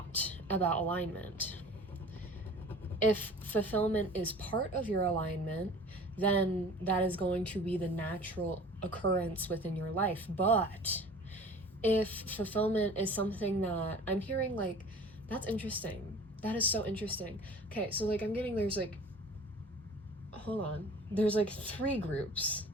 about alignment. If fulfillment is part of your alignment, then that is going to be the natural occurrence within your life. But if fulfillment is something that I'm hearing, like, that's interesting. That is so interesting. Okay, so like there's like, hold on. There's like 3 groups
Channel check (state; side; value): normal; both; correlation 0.44